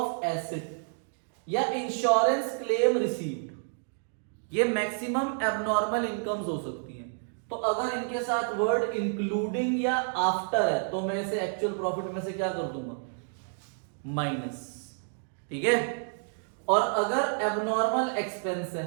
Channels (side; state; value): left; silent; 58 dB below the other